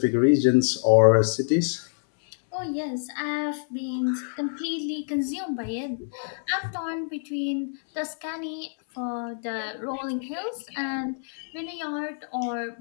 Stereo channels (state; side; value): silent; right; 60 dB below the other